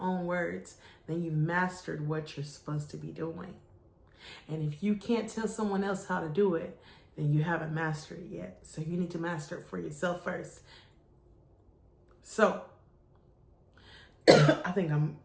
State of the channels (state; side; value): identical; both; correlation 1.00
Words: words, then you've mastered what you're supposed to be doing. And if you can't tell someone else how to do it, then you haven't mastered it yet. So you need to master it for yourself first. So I think I'm